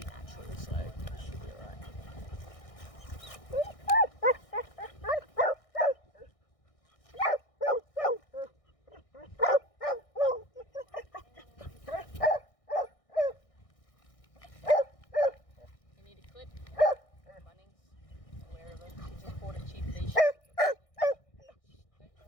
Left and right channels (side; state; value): right; late; 1.6 ms